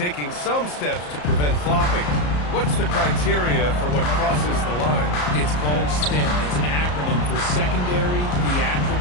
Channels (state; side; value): late; right; 34 ms